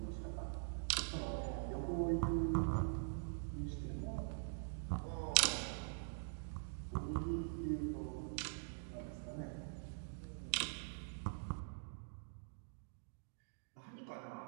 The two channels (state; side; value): silent; left; digital silence